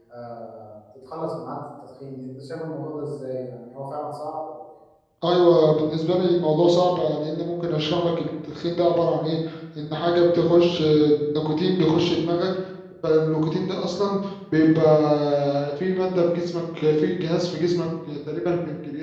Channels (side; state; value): both; identical; correlation 1.00